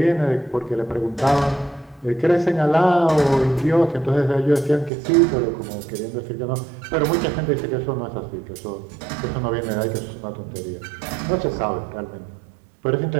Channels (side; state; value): left; drops out; at 4.9 s